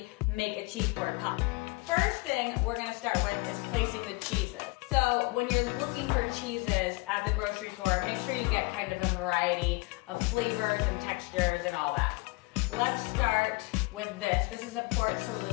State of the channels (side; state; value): right; quieter; 26.3 dB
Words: make a cheese board pop. First thing we're gonna start with is placing the cheeses. So when you're looking for cheeses at the grocery store, make sure you get kind of a variety of flavors and textures and all that. Let's start with this. This is a Port